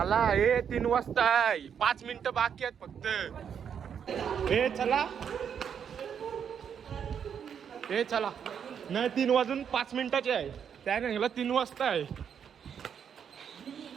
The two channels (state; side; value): quieter; left; 7.8 dB